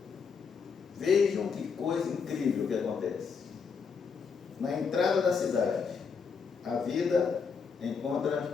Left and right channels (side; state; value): right; quieter; 5.7 dB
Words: Vejam que coisa incrível que acontece. Na entrada da cidade, a vida